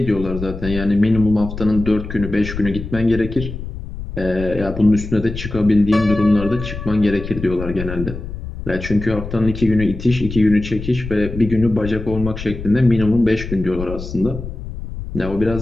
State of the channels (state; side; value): noise; left; rumble, 9 dB below the sound